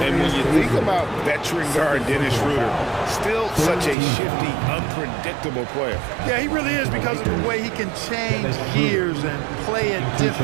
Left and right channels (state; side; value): drops out; left; at 4.0 s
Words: And when you think about veteran guard Dennis Schroeder, still such a shifty, unpredictable player. Yeah, he really is because of the way he can change gears and play at